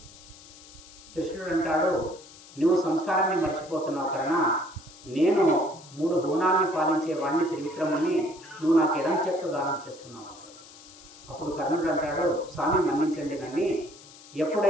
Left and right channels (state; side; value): noise; left; hiss, 20 dB below the sound